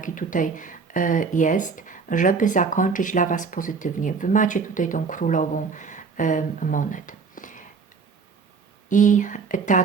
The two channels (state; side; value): quieter; left; 5.1 dB